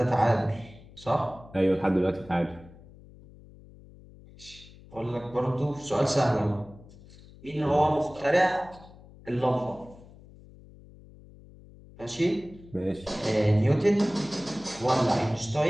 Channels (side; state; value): left; noise; hum, 21 dB below the sound